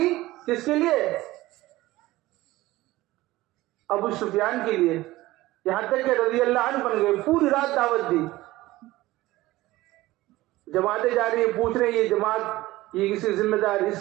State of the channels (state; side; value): quieter; left; 17.8 dB